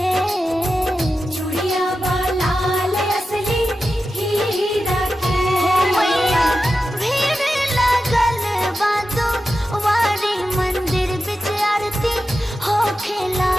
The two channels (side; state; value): both; normal; correlation 0.92